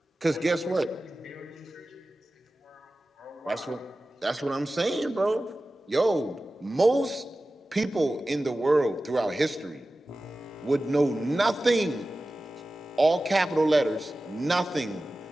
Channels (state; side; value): normal; both; correlation 0.95